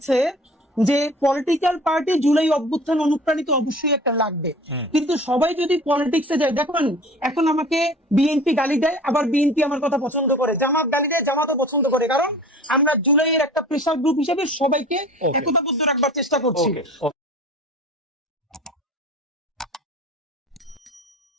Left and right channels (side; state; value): both; normal; correlation 0.43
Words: যে পলিটিক্যাল পার্টি জুলাই অভ্যুত্থান অনুপ্রাণিত অবশ্যই একটা লাগবে, কিন্তু সবাই যদি পলিটিক্সে যায়, দেখুন এখন আমাকে বিএনপি গালি দেয়, আবার বিএনপি আমার কথা পছন্দ করে, জামাত গালি দেয়, জামাতও পছন্দ করে, কারণ আমরা জুলাইয়ের একটা প্রেসার গ্রুপ হিসেবে সবাইকে একতাবদ্ধ রাখবার চেষ্টা করছি।